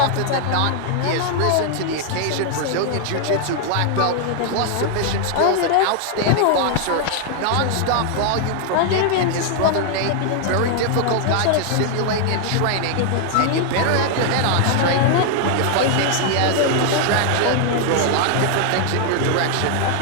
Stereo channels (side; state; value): both; different; correlation 0.00